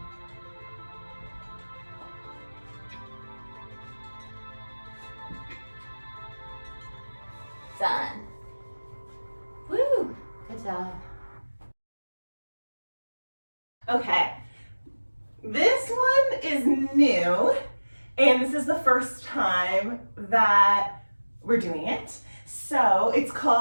Done. Woo! Good job. Okay, this one is new, and this is the first time that we're doing it. So it's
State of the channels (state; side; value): inverted; both; correlation -1.00